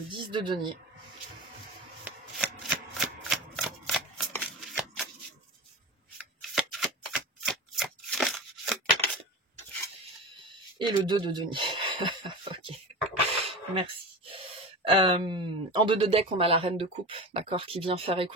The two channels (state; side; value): normal; both; correlation 0.28